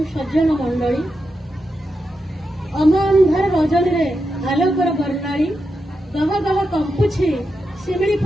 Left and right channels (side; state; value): both; normal; correlation 0.87